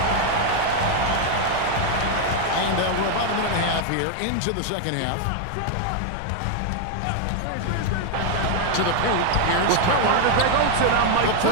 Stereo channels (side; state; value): both; different; correlation 0.00